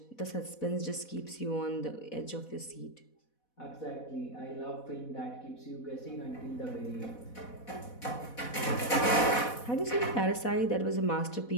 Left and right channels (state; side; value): late; right; 4.1 ms